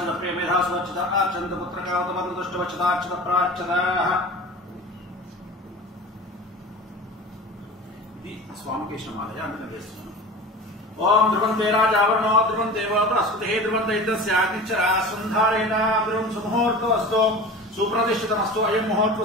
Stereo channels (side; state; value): both; normal; correlation 0.35